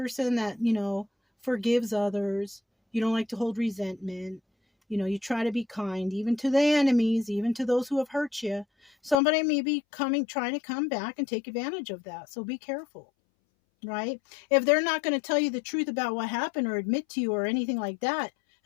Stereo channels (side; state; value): right; drops out; at 9.2 s